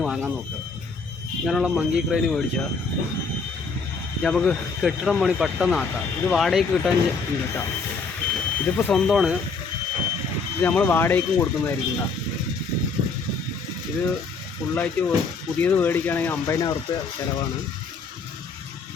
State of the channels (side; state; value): right; quieter; 4.5 dB